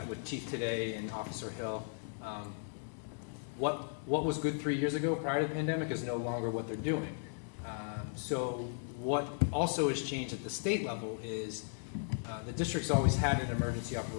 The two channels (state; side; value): silent; right; digital silence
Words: with Chief today and Officer Hill, what was good 3 years ago prior to the pandemic is no longer what they're doing. So what also has changed at the state level is the district's always had an emergency